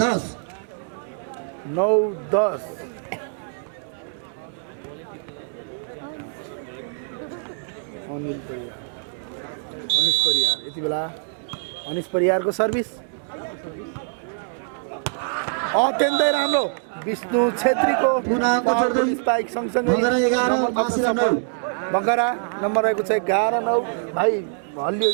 10 9-10 अनिश परियार यति बेला अनिश परियारको सर्भिस अत्यन्तै राम्रो विष्णु छेत्रीको पुनः अङ्क जोड्दै स्पाइक सँगसँगै भगरा 11 महाशिला 9 बगरा नम्बर रहेको छ 11-9 भाइ हल्लियो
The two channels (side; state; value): left; silent; digital silence